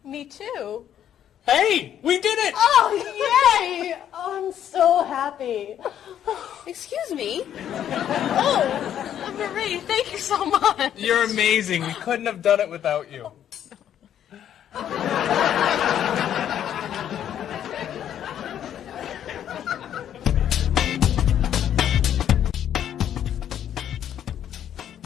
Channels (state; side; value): quieter; right; 10.2 dB